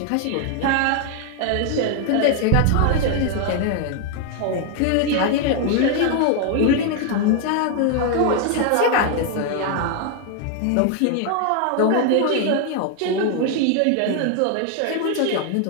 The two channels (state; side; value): different; both; correlation 0.00